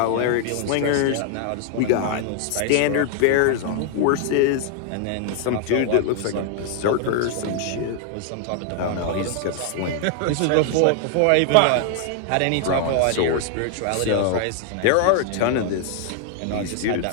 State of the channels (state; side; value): different; both; correlation 0.00